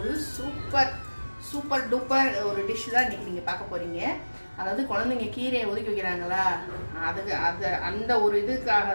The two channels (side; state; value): both; inverted; correlation -1.00